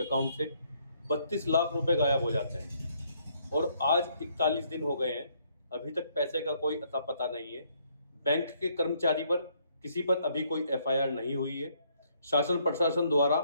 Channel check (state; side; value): inverted; both; correlation -0.69